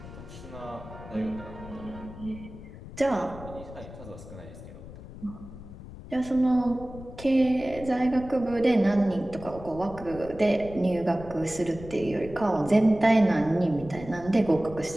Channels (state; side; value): noise; left; rumble, 15 dB below the sound